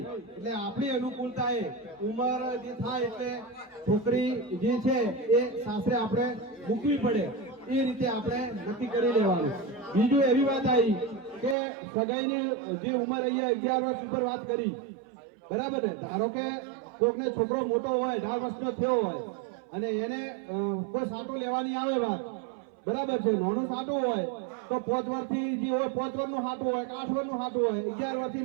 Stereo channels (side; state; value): left; drops out; at 11.6 s